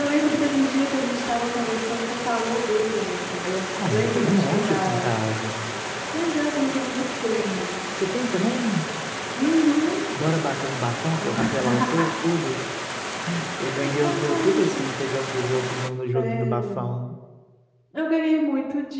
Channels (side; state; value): both; identical; correlation 1.00